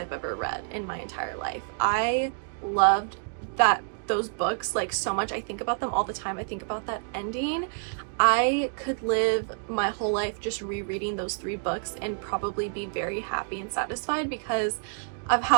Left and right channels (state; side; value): silent; left; digital silence